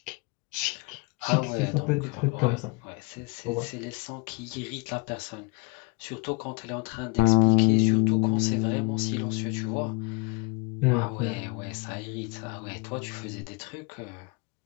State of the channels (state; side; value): quieter; right; 28.9 dB